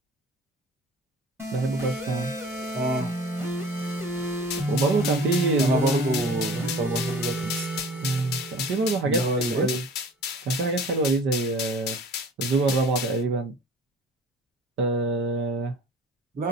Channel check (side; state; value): both; normal; correlation 0.45